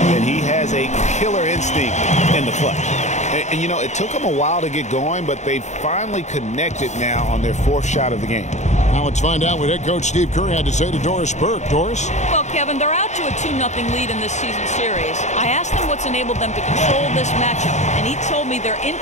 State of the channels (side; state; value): right; late; 0.34 ms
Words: and he has a killer instinct in the clutch. And you know, it took them a while to get going, but they finally connected now on their 4th shot of the game. Now let's find out what head coach Steve Kerr had to say to Doris Burke. Doris? Well, Kevin, they're out to a 2-0 lead in this season series. I asked him what's enabled them to control this matchup, and he told me their